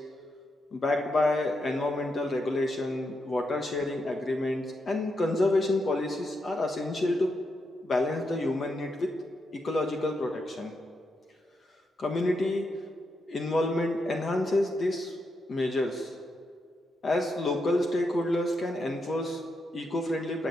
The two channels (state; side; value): normal; both; correlation 0.83